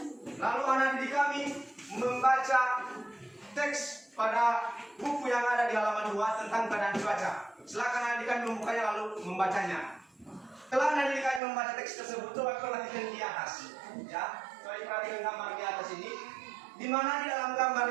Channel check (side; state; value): left; drops out; at 11.4 s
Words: lalu anak didik kami membaca teks pada buku yang ada di halaman 2 tentang keadaan cuaca. Silakan adik kami membukanya lalu membacanya. Setelah adik kami membaca teks tersebut, coba perhatikan di atas. Ya, coba perhatikan gambar di atas ini. Di mana di dalam gambar